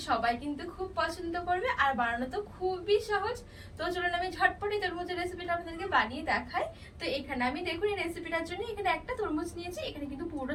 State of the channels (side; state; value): both; identical; correlation 1.00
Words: সবাই কিন্তু খুব পছন্দ করবে আর বানানো তো খুবই সহজ। তো চলুন আমি ঝটপটে তরমুজের রেসিপিটা আপনাদেরকে বানিয়ে দেখাই। তো এখানে আমি দেখুন এই রেসিপিটার জন্য এখানে একটা তরমুজ নিয়েছি। এখানে কিন্তু পুরো